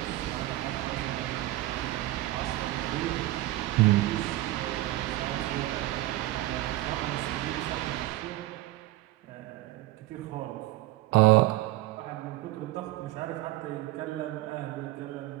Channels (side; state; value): left; quieter; 17.0 dB